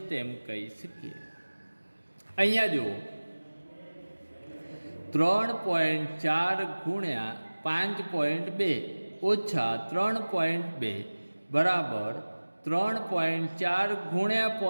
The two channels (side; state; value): both; inverted; correlation -1.00